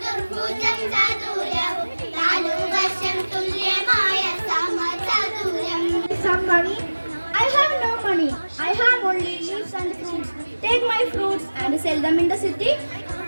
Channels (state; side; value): inverted; both; correlation -1.00